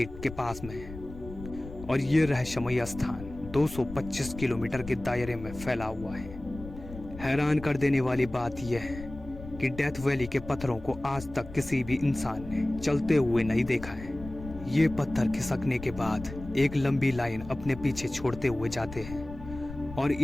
के पास में है। और ये रहस्यमयी स्थान 225 किलोमीटर के दायरे में फैला हुआ है। हैरान कर देने वाली बात यह है कि डेथ वैली के पत्थरों को आज तक किसी भी इंसान ने चलते हुए नहीं देखा है। ये पत्थर खिसकने के बाद एक लंबी लाइन अपने पीछे छोड़ते हुए जाते हैं और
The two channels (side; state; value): left; noise; rumble, 13 dB below the sound